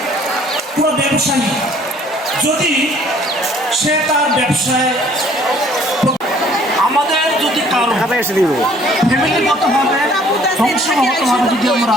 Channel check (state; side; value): normal; both; correlation 0.57